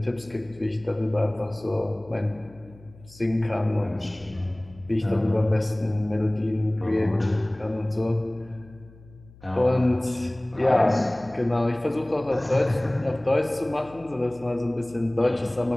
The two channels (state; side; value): noise; left; hum, 23 dB below the sound